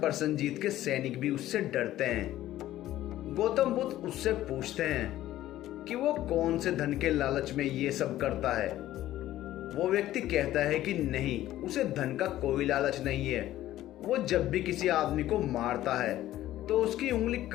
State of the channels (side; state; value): right; quieter; 14.1 dB